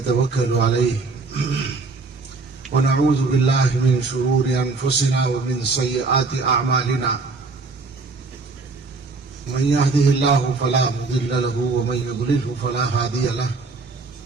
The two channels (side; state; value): left; quieter; 4.0 dB